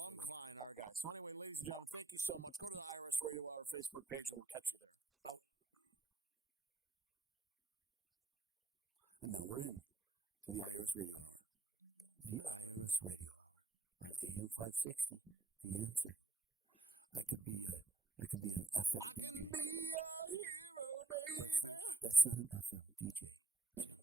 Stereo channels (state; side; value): quieter; left; 3.5 dB